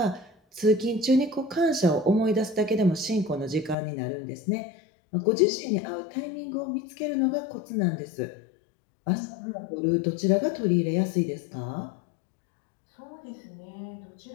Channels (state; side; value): drops out; right; at 3.8 s